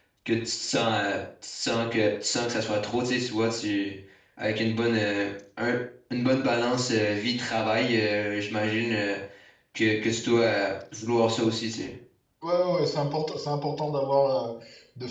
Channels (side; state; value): both; identical; correlation 1.00